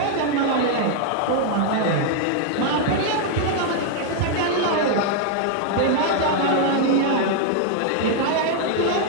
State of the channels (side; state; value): both; different; correlation 0.00